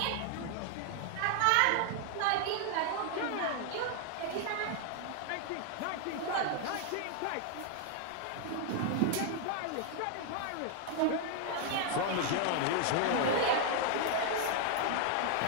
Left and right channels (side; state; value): both; different; correlation 0.00